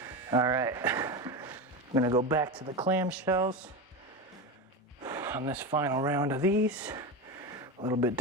All right, I'm gonna go back to the clamshells on this final round of these. A little bit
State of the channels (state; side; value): normal; both; correlation 0.20